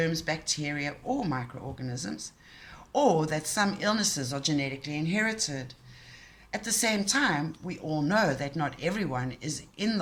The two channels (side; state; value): both; identical; correlation 1.00